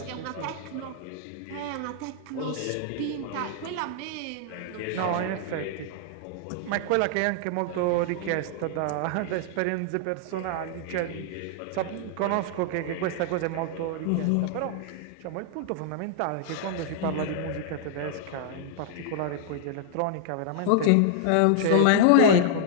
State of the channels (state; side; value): different; both; correlation -0.01